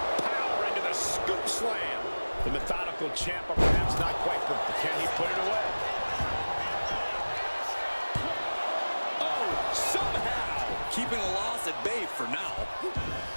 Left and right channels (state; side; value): inverted; both; correlation -1.00